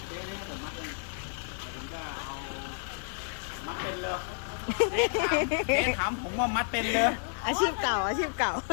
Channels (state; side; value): silent; right; digital silence